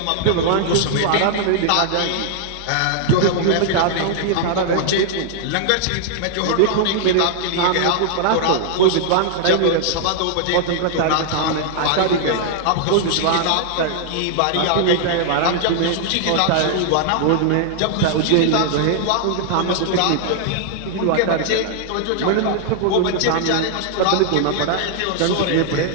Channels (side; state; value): both; different; correlation -0.01